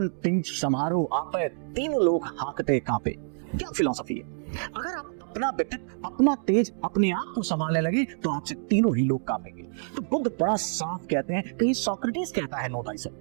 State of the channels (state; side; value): silent; left; digital silence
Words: तिंज समारोह आपे तीनों लोग हाकते कांपे। क्या फिलॉसफी है? अगर आप अपना व्यक्तित्व, अपना तेज, अपने आप को संभालने लगे तो आपसे तीनों ही लोग कांपेंगे। तो बुद्ध बड़ा साफ कहते हैं, कहीं सोक्रेटिस कहता है नो